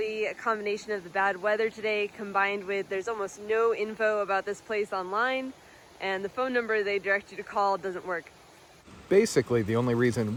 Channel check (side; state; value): both; identical; correlation 1.00